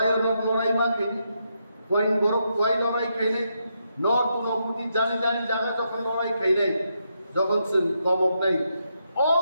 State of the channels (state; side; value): inverted; both; correlation -0.81